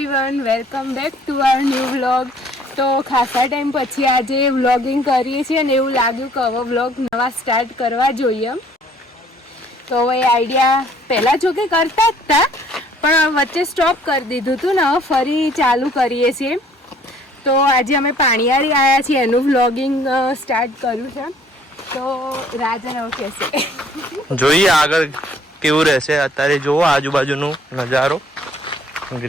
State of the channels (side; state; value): both; normal; correlation 0.59